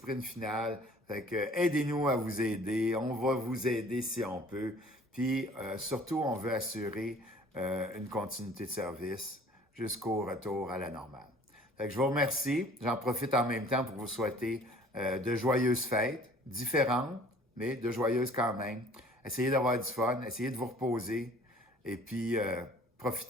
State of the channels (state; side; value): normal; both; correlation 0.52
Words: final. Fait que aidez-nous à vous aider. On va vous aider si on peut. Puis surtout, on veut assurer une continuité de service jusqu'au retour à la normale. Fait que je vous remercie. J'en profite en même temps pour vous souhaiter de joyeuses fêtes, différentes, mais de joyeuses quand même. Essayez d'avoir du fun, essayez de vous reposer et puis